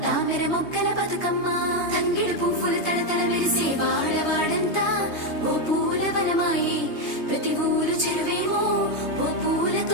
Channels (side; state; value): right; late; 3.2 ms